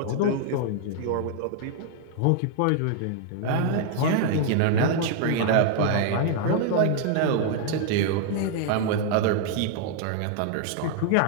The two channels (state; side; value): different; both; correlation 0.00